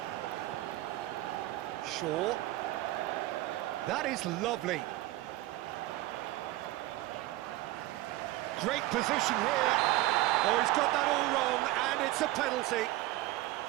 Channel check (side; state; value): left; quieter; 17.3 dB